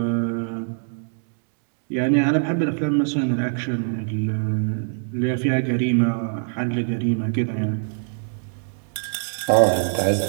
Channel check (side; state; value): left; silent; 63 dB below the other